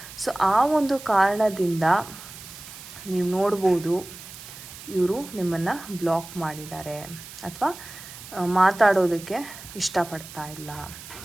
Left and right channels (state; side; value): noise; right; hiss, 15 dB below the sound